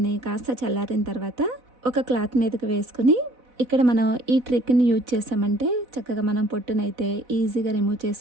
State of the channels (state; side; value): late; left; 4.0 ms